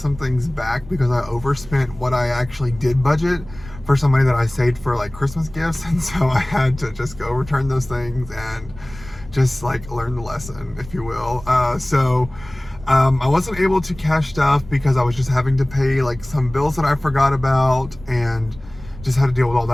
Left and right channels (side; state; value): right; noise; rumble, 18 dB below the sound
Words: things back because I overspent what I actually did budget for some money that I saved for like Christmas gifts, and so I had to just go return those things and just like learn the lesson, if you will. I wasn't able to cash stuff because I was just having to pay like some bills that I forgot about and just had to deal with all